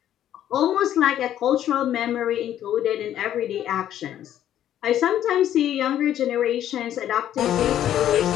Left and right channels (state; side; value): quieter; right; 11.3 dB